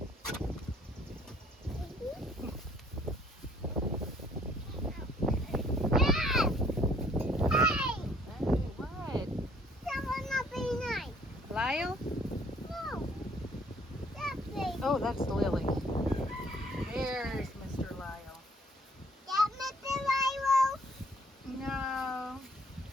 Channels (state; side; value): normal; both; correlation 0.61